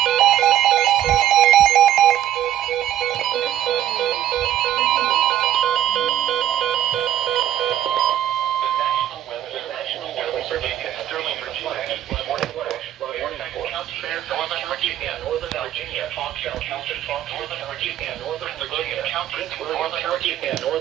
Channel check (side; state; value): left; quieter; 11.9 dB